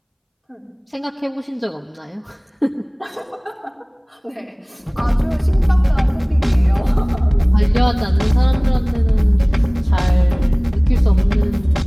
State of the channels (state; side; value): identical; both; correlation 1.00